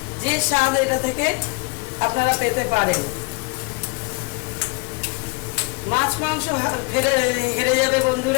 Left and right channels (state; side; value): quieter; right; 29.1 dB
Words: যে স্বাদ এটা থেকে আপনারা পেতে পারেন। মাছ মাংস হেরে যাবে